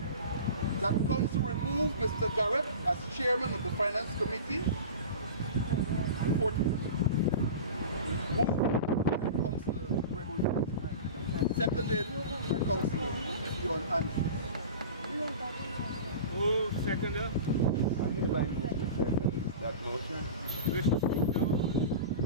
that council remove Mr. Garrett as chairman of the Finance Committee. Moved by Councillor Gregory Fraser. Seconded by Councillor John Andrews. Who seconder? That motion? Wish to speak now?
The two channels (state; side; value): inverted; both; correlation -0.34